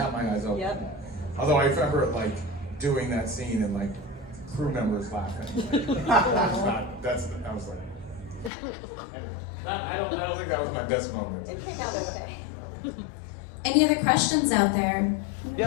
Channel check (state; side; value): drops out; right; at 8.5 s